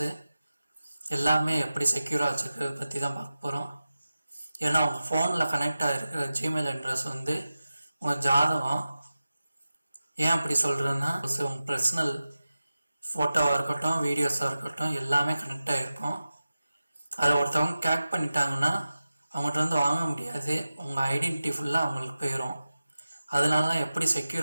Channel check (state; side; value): inverted; both; correlation -0.94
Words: எல்லாமே எப்படி செக்யூராக வச்சுருக்கிறத பற்றி தான் பார்க்க போகிறோம். ஏன்னா உங்கள் ஃபோனில் கனெக்ட் ஆகிருக்கிற ஜிமெயில் அட்ரஸ் வந்து உங்கள் ஜாதகம். ஏன் அப்படி சொல்கிறேன்னா, உங்கள் பர்சனல் ஃபோட்டோவாக இருக்கட்டும், வீடியோஸாக இருக்கட்டும் எல்லாமே கனெக்ட் ஆகிருக்கும். அதை ஒருத்தவங்க கேக் பண்ணிட்டாங்கன்னா அவங்கள்ட்ட வந்து வாங்க முடியாது. உங்கள் ஐடென்டிட்டி ஃபுல்லாக அவங்களுக்கு போயிடும். அதனால தான் எப்படி